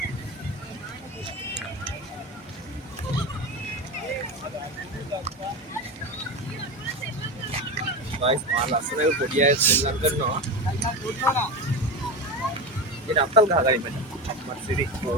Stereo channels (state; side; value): normal; both; correlation 0.21